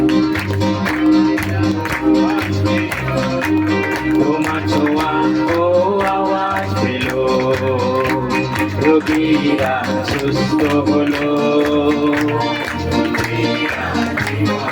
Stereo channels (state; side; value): identical; both; correlation 1.00